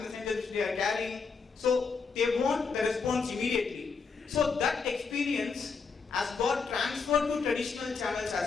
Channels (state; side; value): quieter; right; 5.1 dB